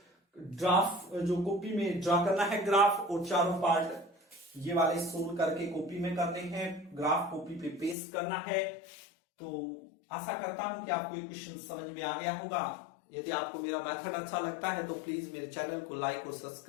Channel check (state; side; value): drops out; right; at 8.0 s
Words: ड्राफ्ट जो कॉपी में ड्रा करना है ग्राफ, और चारों पार्ट ये वाले सोल्व करके कॉपी में करने हैं, ग्राफ कॉपी पे पेस्ट करना है। तो आशा करता हूं कि आपको ये क्वेश्चन समझ में आ गया होगा। यदि आपको मेरा मेथड अच्छा लगता है तो प्लीज मेरे चैनल को लाइक और